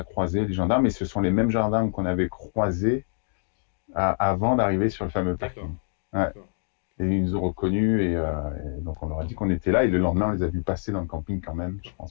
croisés, les gendarmes, et ce sont les mêmes gendarmes qu'on avait croisés avant d'arriver sur le fameux D'accord. parking. Ouais. D'accord. Et ils nous ont reconnus, et donc on leur a dit qu'on était là, et le lendemain, on les a vus passer dans le camping quand même, je D'accord.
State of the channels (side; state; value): right; silent; digital silence